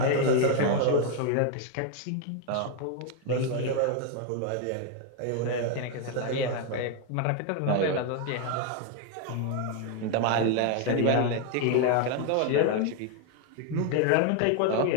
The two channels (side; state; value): both; different; correlation 0.01